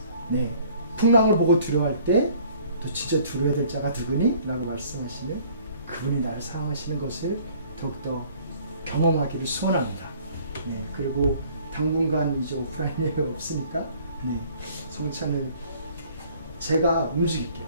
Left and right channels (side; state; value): both; inverted; correlation -0.56